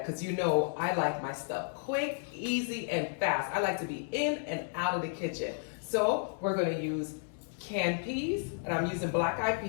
because you know I like my stuff quick, easy, and fast. I like to be in and out of the kitchen. So we're going to use canned peas, and I'm using black-eyed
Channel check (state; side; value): silent; right; digital silence